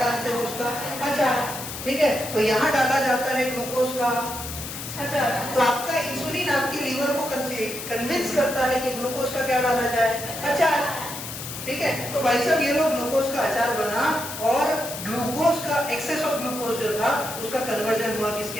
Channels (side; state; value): left; noise; hiss, 8 dB below the sound